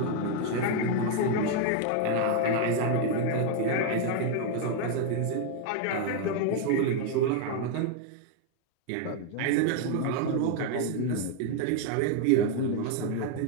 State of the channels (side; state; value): both; different; correlation 0.01